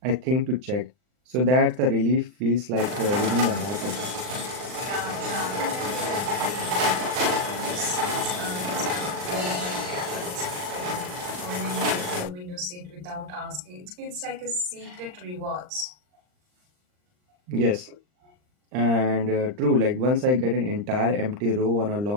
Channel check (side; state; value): left; late; 39 ms